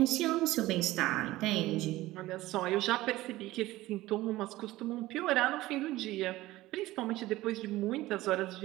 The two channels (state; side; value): quieter; left; 17.3 dB